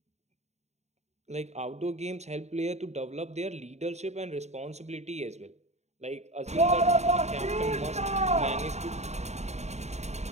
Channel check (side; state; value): left; late; 0.32 ms